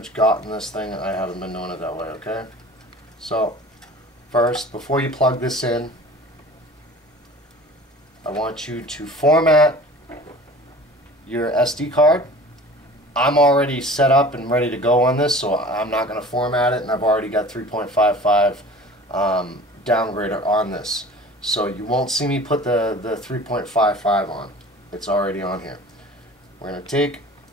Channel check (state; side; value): normal; both; correlation 0.42